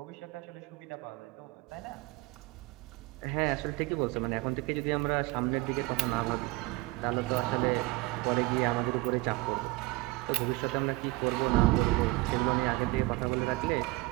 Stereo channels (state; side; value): quieter; left; 21.5 dB